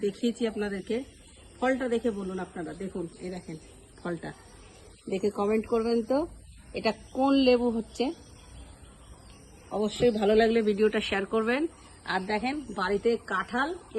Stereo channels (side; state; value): both; identical; correlation 1.00